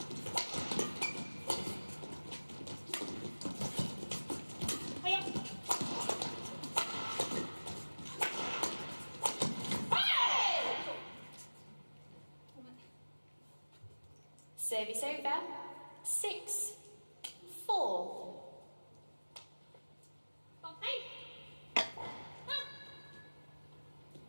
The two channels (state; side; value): inverted; both; correlation -1.00